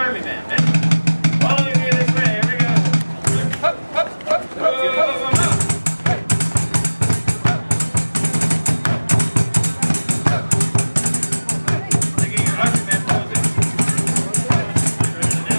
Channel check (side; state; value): both; inverted; correlation -1.00